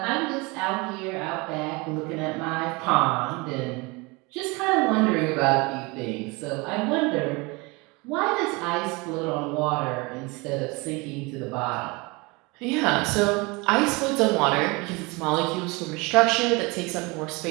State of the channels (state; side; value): quieter; left; 26.4 dB